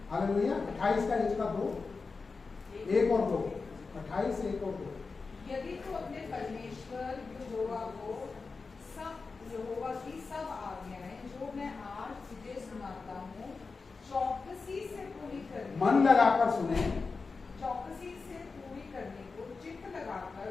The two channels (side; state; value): right; quieter; 4.4 dB